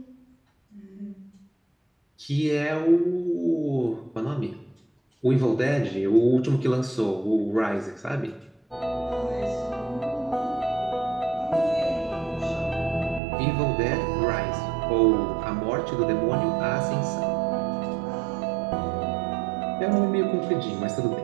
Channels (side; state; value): left; drops out; at 13.2 s